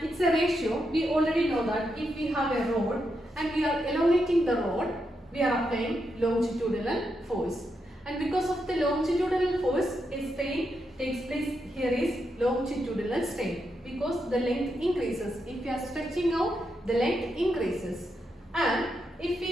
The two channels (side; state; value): both; normal; correlation 0.83